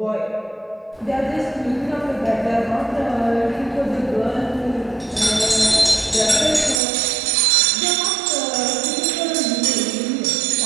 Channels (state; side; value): drops out; left; at 6.8 s